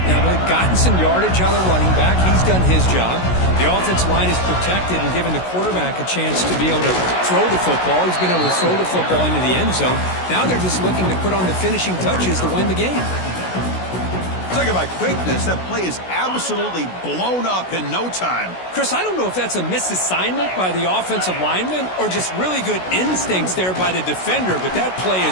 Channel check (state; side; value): late; right; 16 ms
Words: they've gotten some yardage out of the running back. He's done his job. The offensive line is protected and given the quarterback a chance to be able to throw the football. He's been able to throw the football into the end zone. Now they're just looking to put on the finishing touches to win the game. Talking about quickness, that play is absolutely blown up in no time. Chris, I don't know if that's a misassignment by the offensive lineman or just really good instincts there by the defender, but that play